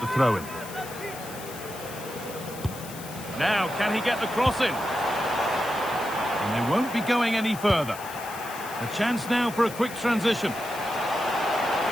the throw-in. Now, can he get the cross in? And they won't be going any further. A chance now for a quick transition.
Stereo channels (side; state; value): left; noise; hiss, 14 dB below the sound